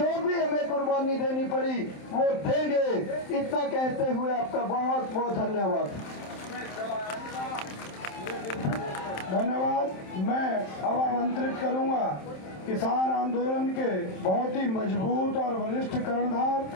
भी हमें कुर्बानी देनी पड़ी वो देंगे। इतना कहते हुए आपका बहुत बहुत धन्यवाद। धन्यवाद। मैं अब आमंत्रित करूंगा किसान आंदोलन के बहुत ही मजबूत और वरिष्ठ कर्णधार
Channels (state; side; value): late; right; 27 ms